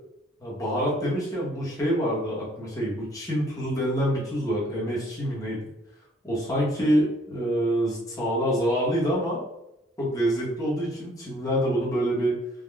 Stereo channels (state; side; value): normal; both; correlation 0.61